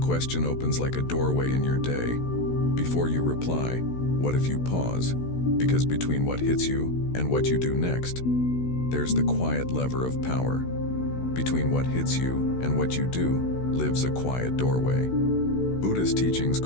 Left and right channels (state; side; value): late; right; 16 ms